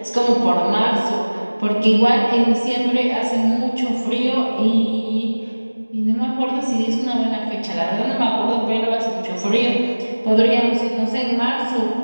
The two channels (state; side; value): inverted; both; correlation -1.00